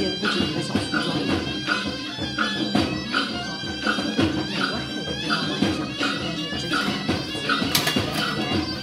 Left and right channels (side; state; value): both; identical; correlation 1.00